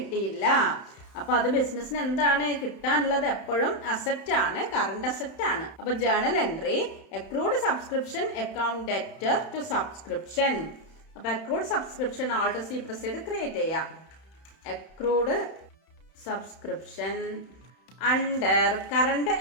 അപ്പൊ അത് ബിസിനസ്സിന് എന്താണ് കിട്ടാനുള്ളത്? എപ്പോഴും അസറ്റ് ആണ്, കറണ്ട് അസറ്റ് ആണ്. അപ്പൊ journal entry accrued subscription account debtor to subscription. അപ്പൊ accrued subscription Alt C press ചെയ്ത് ക്രിയേറ്റ് ചെയ്യാം. Accrued subscription under current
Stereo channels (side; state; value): right; late; 31 ms